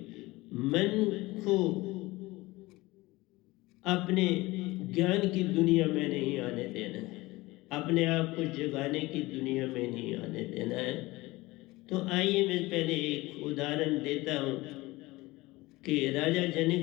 मन को अपने ज्ञान की दुनिया में नहीं आने देना है, अपने आप को जगाने की दुनिया में नहीं आने देना है। तो आइए मैं पहले एक उदाहरण देता हूँ कि राजा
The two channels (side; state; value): right; quieter; 20.5 dB